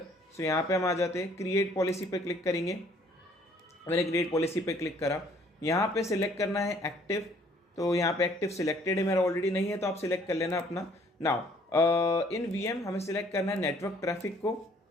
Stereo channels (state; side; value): normal; both; correlation 0.60